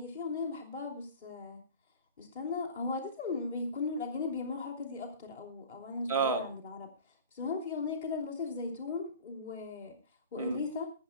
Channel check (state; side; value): inverted; both; correlation -0.38